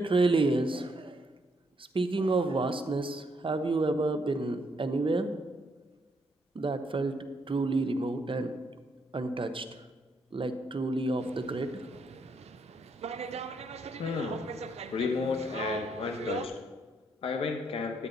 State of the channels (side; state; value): both; normal; correlation 0.74